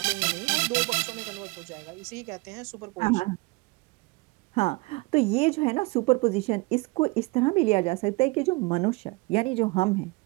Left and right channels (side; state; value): left; quieter; 25.2 dB